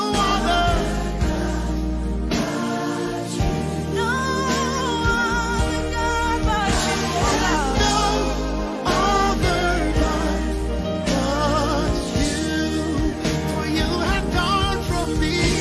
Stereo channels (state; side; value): identical; both; correlation 1.00